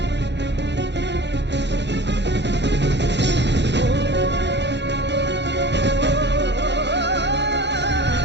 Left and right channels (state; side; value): late; left; 0.51 ms